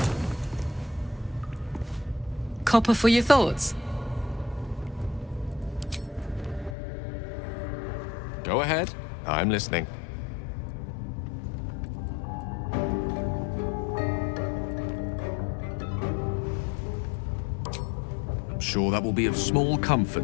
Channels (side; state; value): right; drops out; at 6.8 s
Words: Copper for your thoughts. Go ahead. I'm listening. I'm sure that will be of small